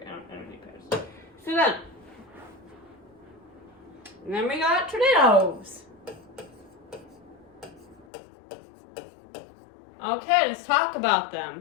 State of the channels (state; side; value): drops out; right; at 8.1 s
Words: I don't need patterns. So then we got tornadoes. Okay, let's talk about